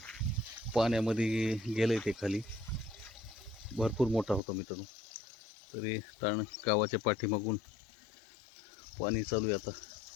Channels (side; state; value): right; drops out; at 4.4 s